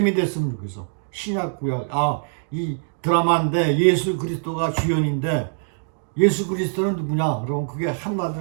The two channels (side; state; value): left; silent; digital silence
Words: 됐으면 좋겠어. 신약 구약. 이 드라마인데 예수 그리스도가 주연인데 예수 그리스도는 누구냐? 그럼 그게